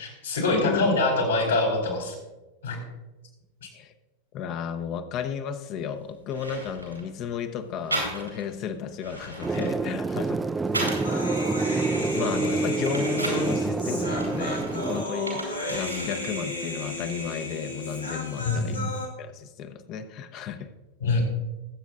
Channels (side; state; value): both; normal; correlation 0.22